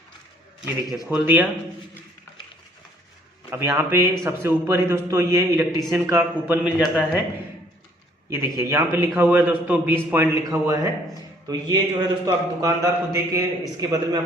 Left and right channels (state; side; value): normal; both; correlation 0.61